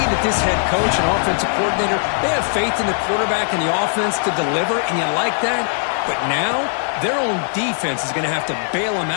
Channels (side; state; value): right; silent; 66 dB below the other